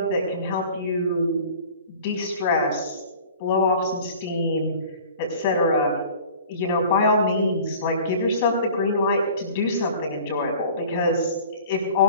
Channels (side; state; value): both; inverted; correlation -0.45